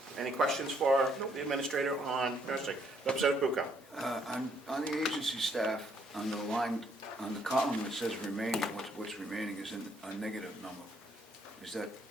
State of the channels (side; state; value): both; normal; correlation 0.69